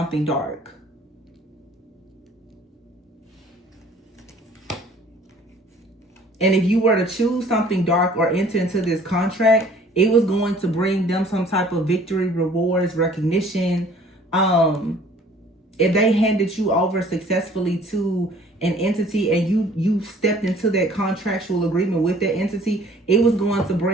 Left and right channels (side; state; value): both; normal; correlation 0.53